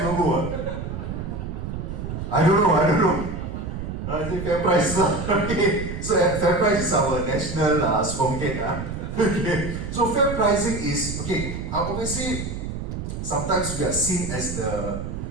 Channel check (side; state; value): right; noise; rumble, 6 dB below the sound